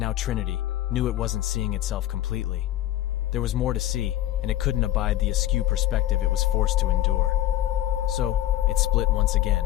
Trinity, knew it wasn't seeing itself completely. There was more to see, and it couldn't abide the askew perspective it was forced to endure. So, it split once again,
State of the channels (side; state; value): right; quieter; 13.8 dB